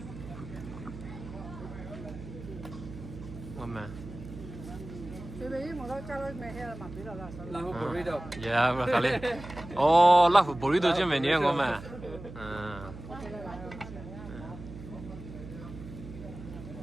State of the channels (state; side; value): noise; right; hum, 13 dB below the sound